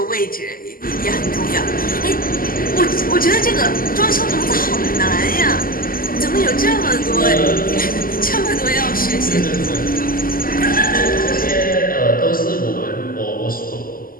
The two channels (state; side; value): late; right; 0.42 ms